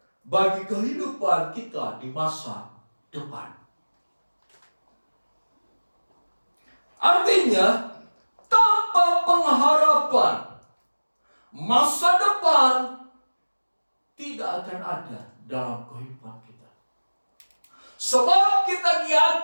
bagi kehidupan kita di masa depan. Artinya, tanpa pengharapan, masa depan tidak akan ada dalam kehidupan kita. Sebab kita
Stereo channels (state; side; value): inverted; both; correlation -1.00